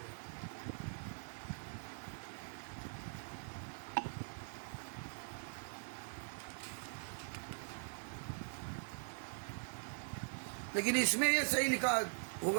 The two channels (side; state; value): left; silent; digital silence